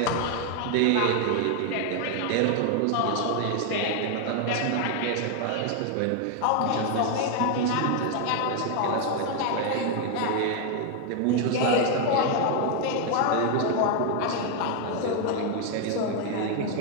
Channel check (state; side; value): different; both; correlation 0.00